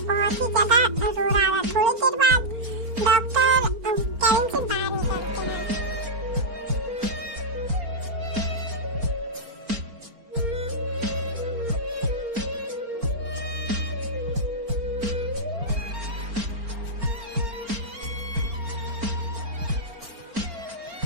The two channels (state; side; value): late; left; 4.4 ms